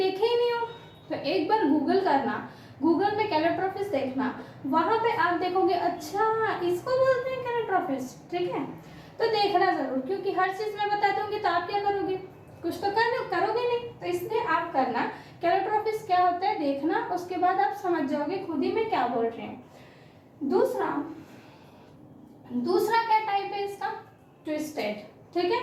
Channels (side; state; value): both; identical; correlation 1.00